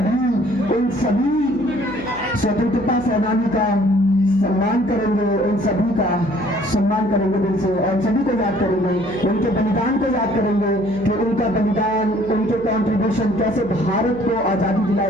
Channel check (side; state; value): right; noise; hum, 19 dB below the sound